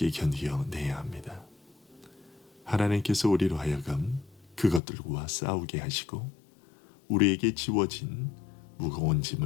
견뎌내야 합니다. 하나님께서 우리로 하여금 그것들과 싸우게 하시고 우리에게 지워진 무거운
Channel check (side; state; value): right; drops out; at 4.8 s